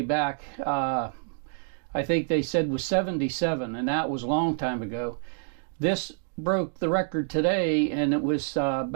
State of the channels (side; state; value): left; silent; 60 dB below the other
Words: back. I think they said was 77, and that was a long time ago. This broke the record today, and it was